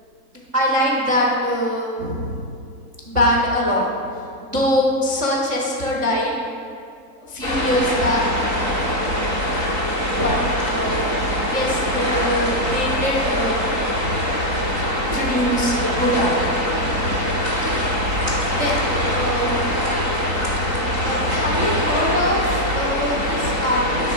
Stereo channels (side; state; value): left; late; 3.9 ms